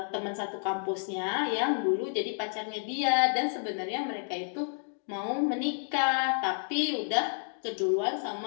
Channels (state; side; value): silent; right; 58 dB below the other